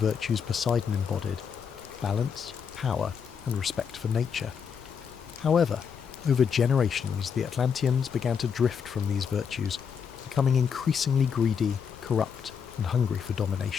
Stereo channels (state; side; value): quieter; right; 6.8 dB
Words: Poseidon embodied: balance, power, and respect for nature. However, over generations, the Atlanteans began to drift from these virtues, becoming increasingly greedy, corrupt, and hungry for